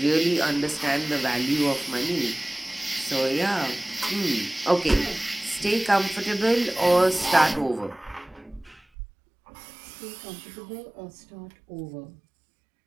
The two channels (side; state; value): left; drops out; at 8.8 s